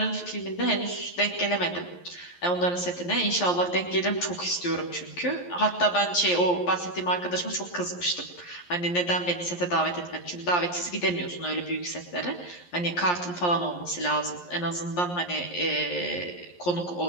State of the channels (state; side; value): late; right; 11 ms